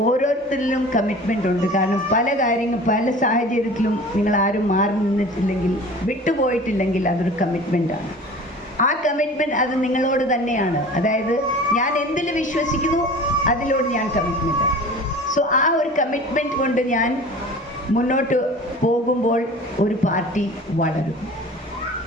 കമ്മിറ്റ്മെൻ്റ് ഉണ്ട്. കാരണം പല സാഹചര്യത്തിലും നിങ്ങൾ ആരും മാറി നിന്നിട്ടില്ലെങ്കിൽ, വിട്ടുപോയിട്ടില്ലെങ്കിൽ അതൊരു കമ്മിറ്റ്മെൻറ്റാണ്. ആ കമ്മിറ്റ്മെൻറ്റ് അത് നിങ്ങളോട് തന്നെയാണ്. അതായത് ഞാൻ എന്തിൽ വിശ്വസിക്കുന്നു അതിലോട് ഞാൻ കമ്മിറ്റ്മെൻറ്റാണ്. സോ ആ ഒരു കമ്മിറ്റ്മെൻറ്റ് കൊണ്ട് ഞാൻ മുന്നോട്ട് പോകുമ്പോൾ ഒരു പാർട്ടി വളരും.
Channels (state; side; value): normal; both; correlation 0.41